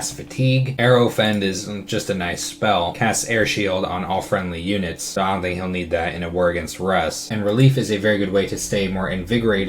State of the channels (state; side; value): identical; both; correlation 1.00